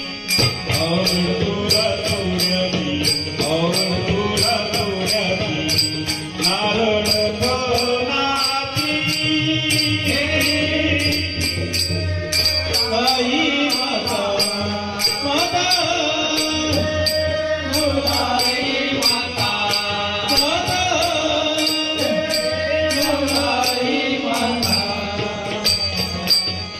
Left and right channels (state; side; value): identical; both; correlation 1.00